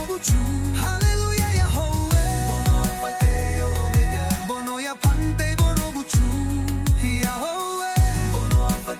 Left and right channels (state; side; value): identical; both; correlation 1.00